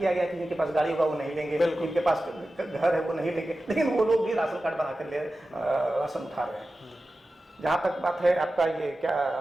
गया कि जिनके पास गाड़ी होगा वो नहीं लेंगे, जिनके पास घर है वो नहीं लेंगे, लेकिन वो लोग भी राशन कार्ड बना कर राशन उठा रहे हैं। जहाँ तक बात है आपका ये क्या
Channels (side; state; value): both; normal; correlation 0.94